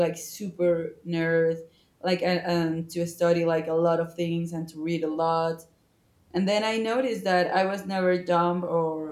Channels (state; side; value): identical; both; correlation 1.00